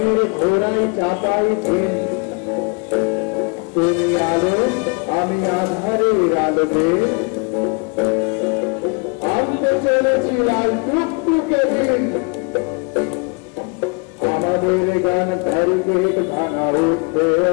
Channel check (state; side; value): quieter; right; 32.6 dB